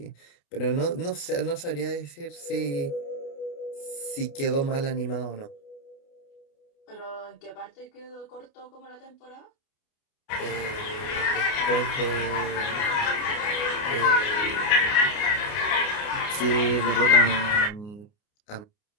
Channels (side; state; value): right; late; 29 ms